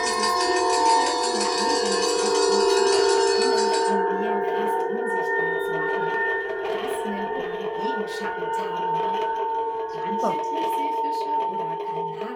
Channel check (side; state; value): both; identical; correlation 1.00